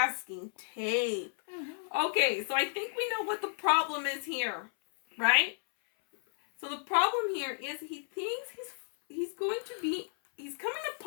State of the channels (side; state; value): right; silent; 56 dB below the other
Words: tape. Okay, so I think we know what the problem is here, right? So the problem here is he thinks he's coming